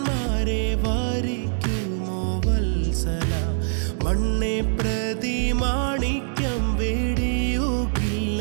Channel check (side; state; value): left; silent; digital silence